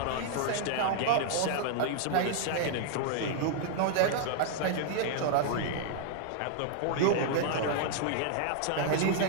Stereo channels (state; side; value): different; both; correlation -0.01